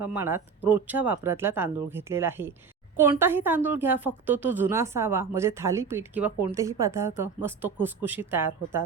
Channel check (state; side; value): quieter; left; 5.7 dB